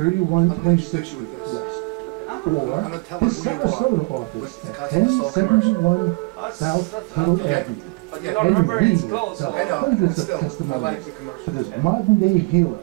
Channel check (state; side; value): quieter; left; 27.2 dB